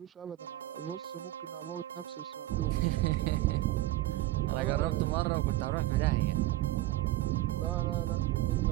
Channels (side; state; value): left; quieter; 17.0 dB